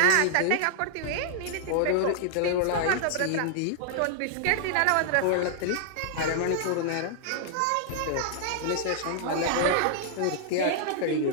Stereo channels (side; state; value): both; different; correlation -0.01